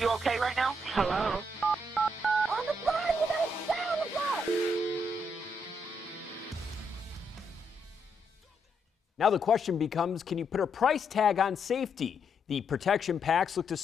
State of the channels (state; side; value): normal; both; correlation 0.77